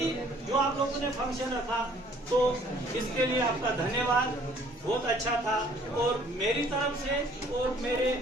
जो आप लोगों ने फंक्शन रखा तो इसके लिए आपका धन्यवाद, बहुत अच्छा था। और मेरी तरफ से और मेरे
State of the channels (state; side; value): normal; both; correlation 0.58